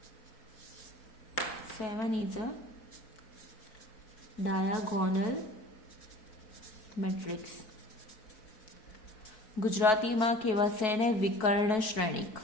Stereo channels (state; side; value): late; right; 4.6 ms